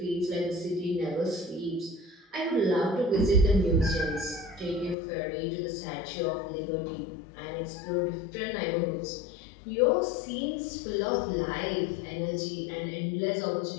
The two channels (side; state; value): right; drops out; at 5.0 s